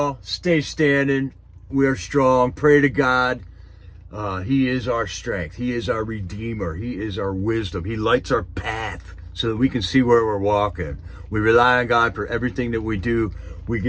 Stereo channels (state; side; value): identical; both; correlation 1.00